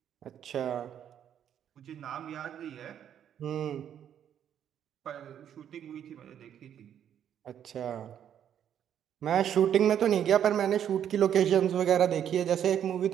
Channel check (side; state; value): left; quieter; 9.6 dB